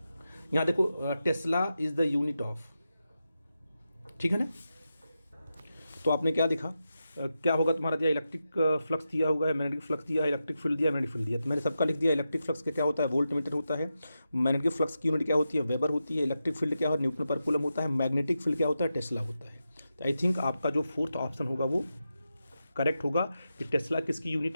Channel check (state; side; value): inverted; both; correlation -0.89